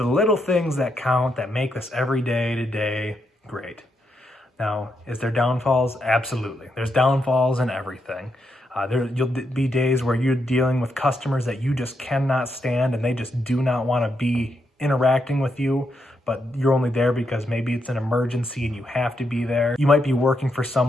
little things that count, that make this every day to day great. Now, is there downfalls? Absolutely. There's downfalls in everything. You'll be days where you're dealing with customers that you just cannot stand and they just do not want to be interacting with you, but you're only there because maybe it's an emergency and you have to be there. You might be working for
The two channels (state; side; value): normal; both; correlation 0.81